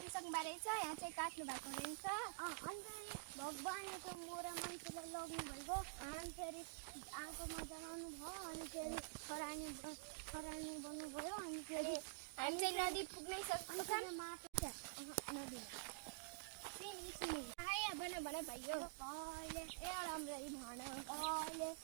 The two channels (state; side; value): quieter; left; 35.6 dB